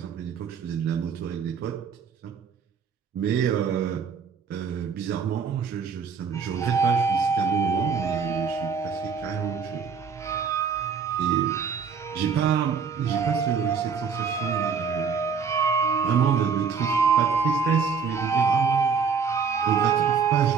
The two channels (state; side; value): quieter; left; 6.0 dB